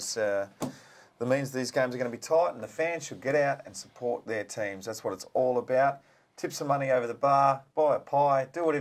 that means these games are going to be tight and the fans should get out and support their teams. That's what it's all about. Tip some money over the bar, buy a pie, do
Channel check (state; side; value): identical; both; correlation 1.00